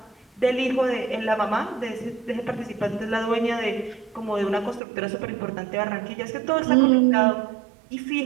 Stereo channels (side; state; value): left; drops out; at 4.8 s